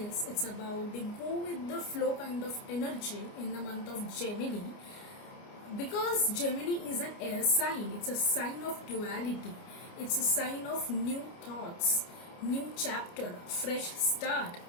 It's about the go with the flow kind of energy in the month of Gemini. Because Gemini is an air sign, it's a sign of duality. It's a sign of new thoughts, new chapter, fresh start.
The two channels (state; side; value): late; right; 29 ms